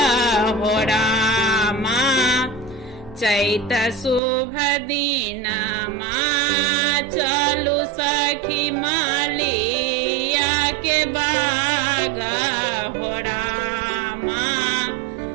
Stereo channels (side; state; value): left; drops out; at 4.2 s